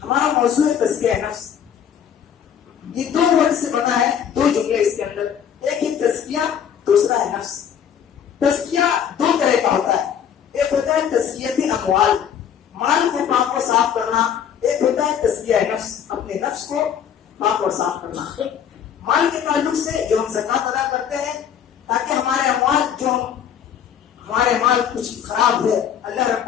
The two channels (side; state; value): right; quieter; 8.6 dB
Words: ہمارا موضوع ہے تزکیہ نفس. یہ دو ورڈ سے بنا ہے، دو جملے اس کے اندر، ایک ہے تزکیہ، دوسرا ہے نفس. تزکیہ دو طرح کا ہوتا ہے، ایک ہوتا ہے تزکیت اموال، مال کو پاک اور صاف کرنا، ایک ہوتا ہے تزکیہ نفس، اپنے نفس کو پاک اور صاف کرنا. مال کے تعلق سے جو ہم زکات ادا کرتے ہیں تاکہ ہمارے اموال، جو ہمارے مال کچھ خراب ہے، اللہ